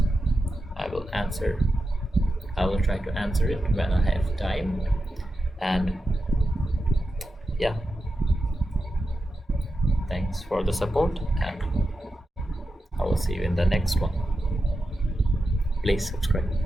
I will answer. I will try to answer it when I have time. And yeah, thanks for the support, and I will see you in the next one. Please subscribe.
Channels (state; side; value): normal; both; correlation 0.90